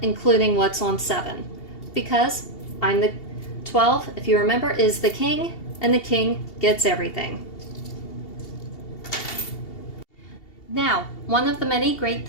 including what's on 7, because I'm the 12, if you remember, is the king, and the king gets everything. Now, one of the many great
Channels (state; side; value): late; right; 2.7 ms